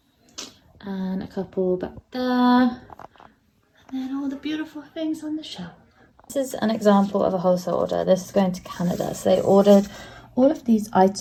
And a couple back there. And then all the beautiful things on the shelf. This is an example of a wholesale order. This is going to Canada. So they ordered all of these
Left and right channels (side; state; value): both; identical; correlation 1.00